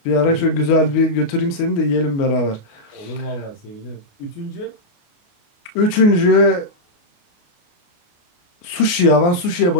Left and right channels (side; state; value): right; late; 29 ms